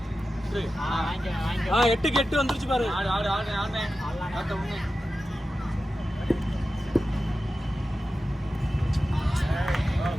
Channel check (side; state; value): both; normal; correlation 0.93